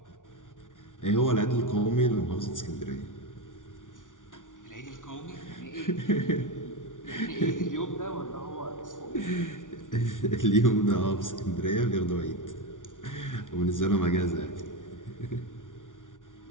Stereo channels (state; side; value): late; right; 0.88 ms